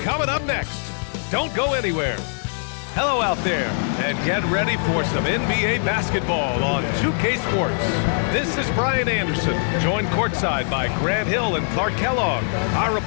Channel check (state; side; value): silent; right; digital silence